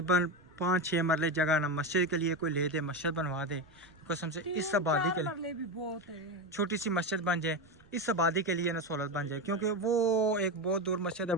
5-6 मरले जगह ना मस्जिद के लिए कोई ले दे, मस्जिद बनवा दे कसम से, इस आबादी के लिए भी बहुत है, छोटी सी मस्जिद बन जाए, इस आबादी के लिए ना सहूलत बन जाए, क्योंकि वो एक बहुत दूर मस्जिद है,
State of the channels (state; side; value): noise; right; rumble, 28 dB below the sound